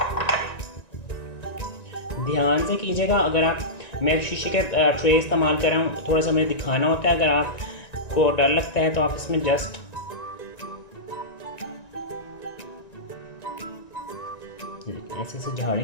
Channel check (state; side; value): late; right; 1.9 ms